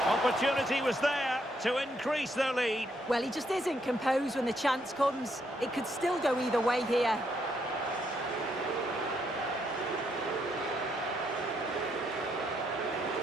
Opportunity was there to increase their lead. Well, he just isn't composed when the chance comes. It could still go either way here.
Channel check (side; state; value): both; normal; correlation 0.75